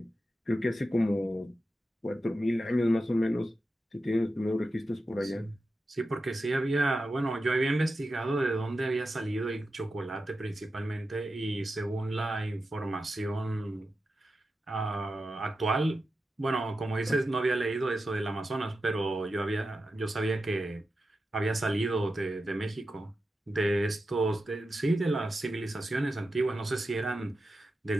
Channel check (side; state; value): both; normal; correlation 0.90